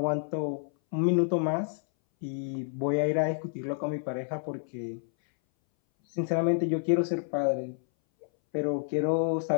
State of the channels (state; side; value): silent; right; 58 dB below the other